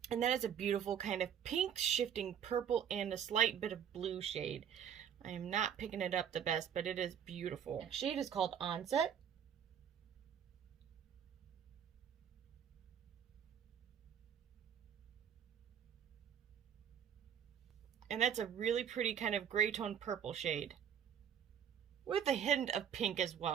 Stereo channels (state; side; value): quieter; left; 8.7 dB